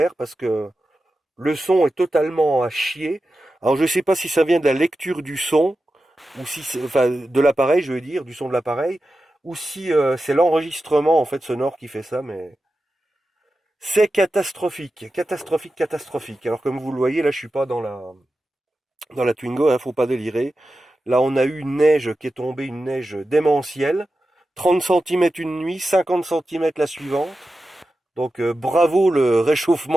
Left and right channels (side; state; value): both; normal; correlation 0.92